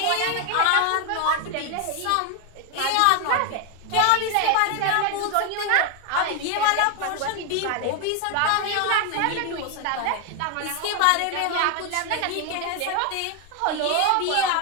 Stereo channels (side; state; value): both; different; correlation 0.01